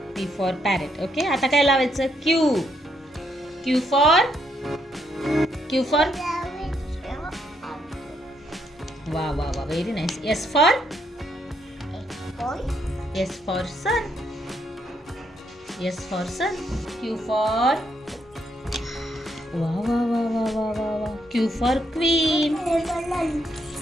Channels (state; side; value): normal; both; correlation 0.75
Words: पी फॉर पॅरेट. ओके, आता काय लावायचं? Q. Q for. Q for. वा वा वा, very nice. S for. S for sun. S for sun. Q for. वा वा वा वा वा वा वा. Q for queen. हे